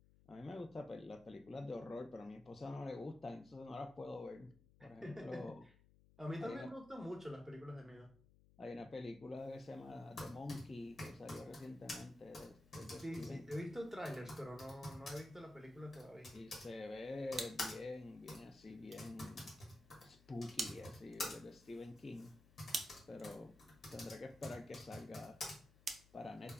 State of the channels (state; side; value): noise; left; hum, 23 dB below the sound